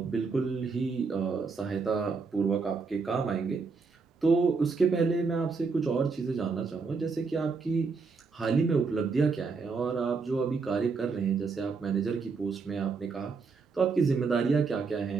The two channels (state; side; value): quieter; left; 4.7 dB